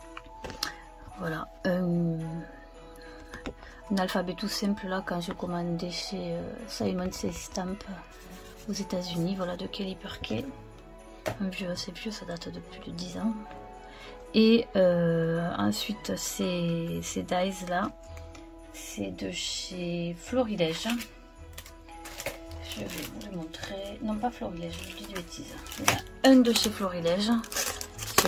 voilà, un alphabet tout simple là, quand j'ai commandé chez Simon Says Stamp aux États-Unis. Voilà, de Kelly Perkey, un vieux, assez vieux, ça date de plus de 10 ans. Et ensuite ces dies là, c'est de chez Florilège. Je vais vous le montrer, non pas Florilège, je dis des bêtises. Il y a un de chez Florilège.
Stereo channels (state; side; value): identical; both; correlation 1.00